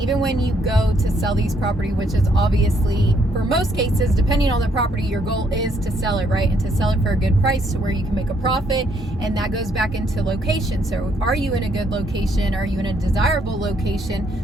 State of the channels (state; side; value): normal; both; correlation 0.70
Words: when you go to sell these property, which is obviously, for most cases, depending on the property, your goal is to sell it, right? And to sell it for a good price to where you can make a profit. And that goes back into location. So are you in a good location? Are you in a desirable